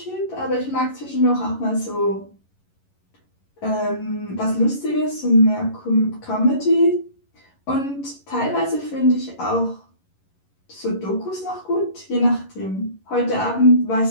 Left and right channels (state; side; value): late; right; 11 ms